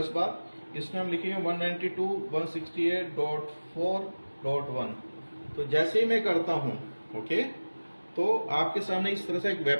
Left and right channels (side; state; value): both; inverted; correlation -1.00